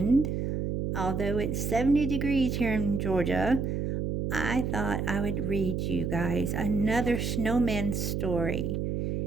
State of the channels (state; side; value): noise; right; hum, 1 dB below the sound